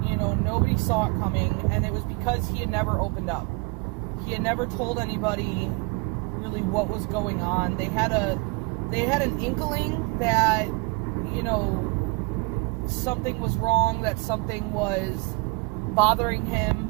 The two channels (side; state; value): left; quieter; 29.3 dB